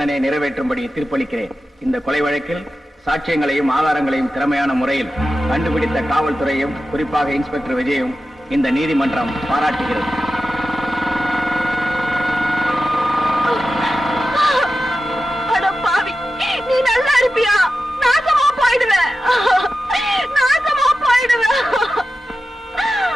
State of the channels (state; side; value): normal; both; correlation 0.93